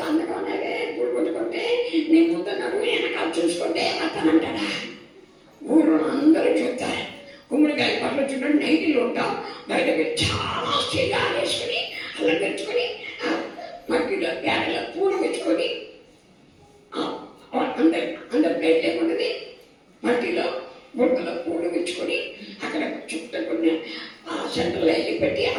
అందంగా ఉన్నావే, పూలు పట్టుకుంటే నీ ముందు నడువు వెనకాల చూసుకుంటే భర్తనంటాడా? ఊరు అందరూ చూస్తారు. గుమ్మడికాయ పట్ల చూడండి, నైటీలు ఉంటాం. బయటకు చాలా చీగా వేసుకొని అలంకరించుకొని మట్టిలో పేడలో పూలు పెట్టుకొని అందరి ప్లేట్ ఏముంటుంది, మట్టిలో బుట్టలో పూలు పెట్టుకొని అక్కడ చుట్టుకుని సెంటర్లో వెళ్ళి పెట్టి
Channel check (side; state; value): both; identical; correlation 1.00